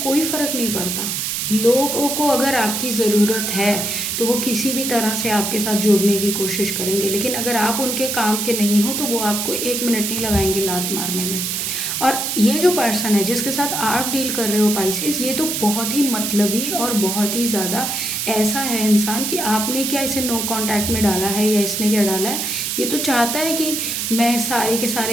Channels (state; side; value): noise; right; hiss, 1 dB below the sound